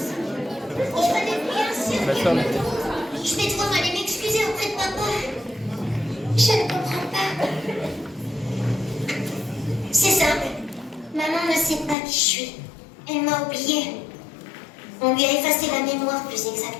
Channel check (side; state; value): right; drops out; at 12.0 s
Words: Je vais devoir aller m'excuser auprès de papa. Je ne comprends pas. C'est simple. Maman ne sait pas qui je suis. Elle m'a oubliée. On lui a effacé la mémoire, plus